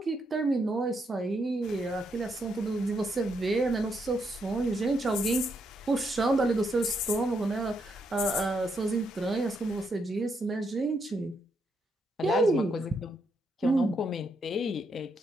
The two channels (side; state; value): both; normal; correlation 0.78